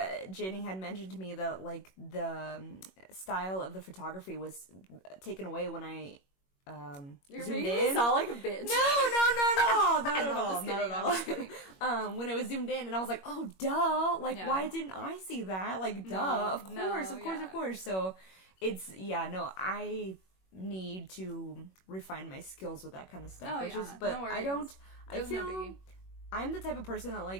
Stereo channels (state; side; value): late; right; 21 ms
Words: Jenny had mentioned to me that, like, the style of the photography was taken away when I You're zoomed making me in. sound like a bitch. Not at all. When it was zoomed in, and I was like, oh, duh. Like, why didn't I see that? Like, duh. Of course. So, I need to refine my skills with that kind of stuff. I feel I'm the type of person that,